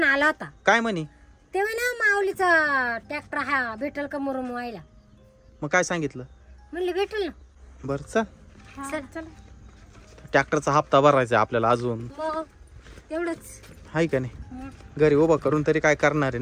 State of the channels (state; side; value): identical; both; correlation 1.00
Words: आला होता. काय म्हणे? तेव्हा ना माऊलीचा ट्रॅक्टर हा भेटल का मुरुम व्हायला? मग काय सांगितलं? म्हणले भेटल ना. बर चल. चल चल. ट्रॅक्टरचा हप्ता भरायचा आपल्याला अजून. मग तेवढंच हाय का नाही? घरी उभा करून तरी काय करणार आहे